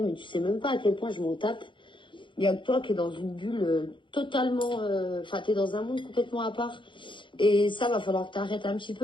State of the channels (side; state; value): right; late; 0.24 ms